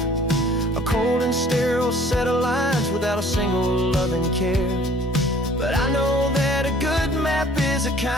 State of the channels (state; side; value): normal; both; correlation 0.53